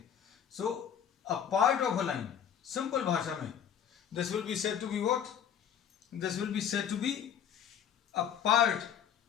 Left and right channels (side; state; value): right; quieter; 8.8 dB